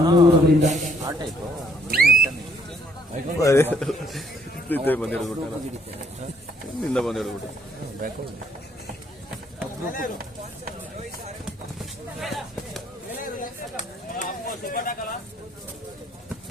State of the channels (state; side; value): normal; both; correlation 0.66